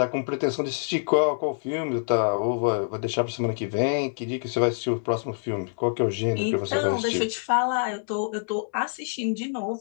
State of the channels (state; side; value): silent; right; digital silence